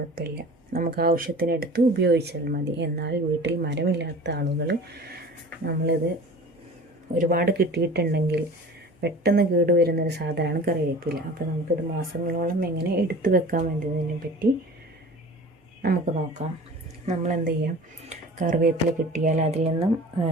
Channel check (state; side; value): normal; both; correlation 0.41